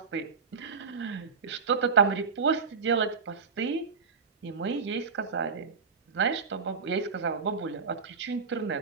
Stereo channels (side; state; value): left; quieter; 5.3 dB